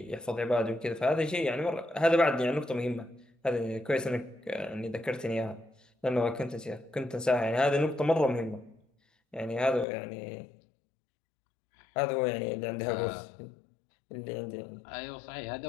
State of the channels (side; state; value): right; drops out; at 9.9 s